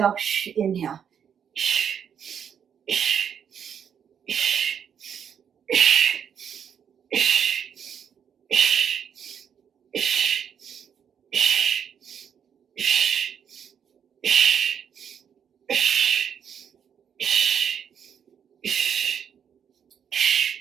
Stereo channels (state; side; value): quieter; left; 8.0 dB